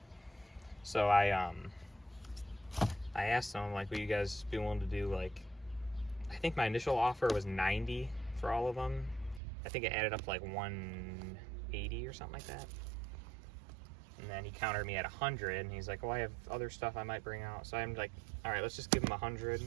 So I asked them, like, would you guys be willing to do, like, I think my initial offer was 90 for all of them. I think it added up to like 180 or something like that. And then he countered me at 100, and he's like, well, I have other stuff I might bring out. So I'm like, all right, let's just give him 100,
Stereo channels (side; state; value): left; drops out; at 9.4 s